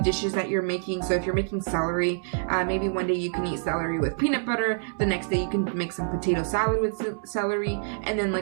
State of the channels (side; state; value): left; silent; 61 dB below the other